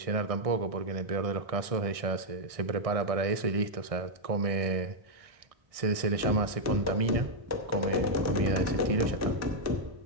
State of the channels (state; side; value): late; left; 1.6 ms